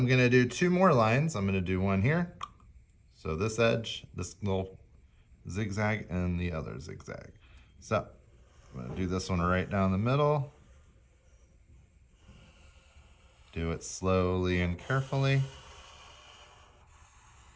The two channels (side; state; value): both; identical; correlation 1.00